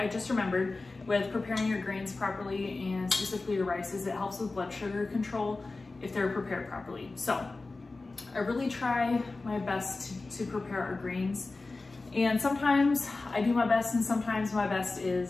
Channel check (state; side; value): quieter; right; 3.5 dB